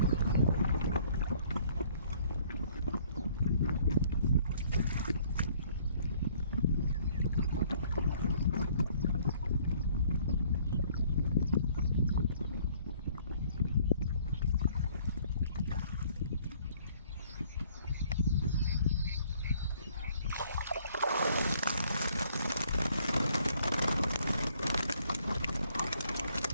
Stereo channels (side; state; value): both; inverted; correlation -0.60